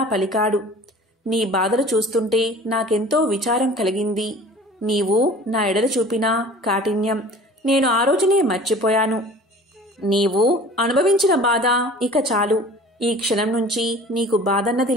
పలికాడు. నీ బాధలు చూస్తుంటే నాకెంతో విచారం కలిగింది. నీవు నా ఎడల చూపిన కాఠిన్యం నేను ఆ రోజునే మర్చిపోయాను. నీవు అనుభవించిన బాధ ఇక చాలు. ఈ క్షణం నుంచి నీకు బాధన్నది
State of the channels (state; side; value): normal; both; correlation 0.45